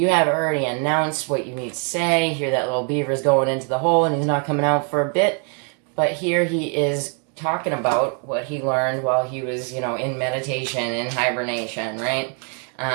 already announced what you need to say. Here that little beaver's going into the hole and he's not coming out for a bit. But here he is talking about what he learned while he was, in meditation, in hibernation, right?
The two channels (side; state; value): left; quieter; 39.7 dB